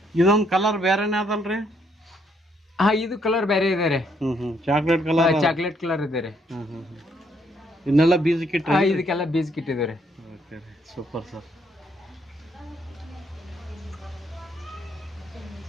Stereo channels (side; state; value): both; normal; correlation 0.71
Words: ಇದೊಂದ್ ಕಲರ್ ಬೇರೆನೇ ಅದಲ್ರಿ? ಹಾ, ಇದು ಕಲರ್ ಬೇರೆ ಇದೆ ರೀ. Chocolate colour? ಚಾಕ್ಲೇಟ್ ಕಲರ್ ಇದೆ ರೀ. ಇದನ್ನೆಲ್ಲ ಬೀಜ ಕಿಟ್? ಇದಕ್ಕೆಲ್ಲ ಬೀಜ ಕಿಟ್ಟಿದೆ ರೀ. Super sir.